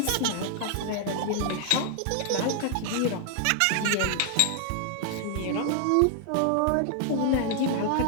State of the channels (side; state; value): both; different; correlation 0.00